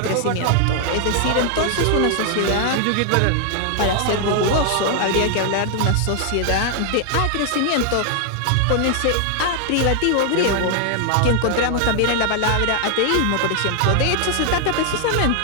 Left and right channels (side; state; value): both; different; correlation 0.00